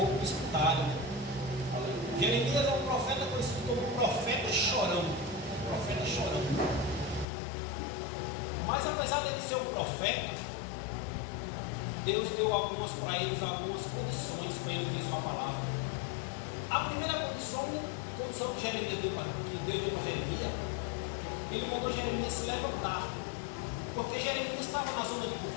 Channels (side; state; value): right; drops out; at 7.2 s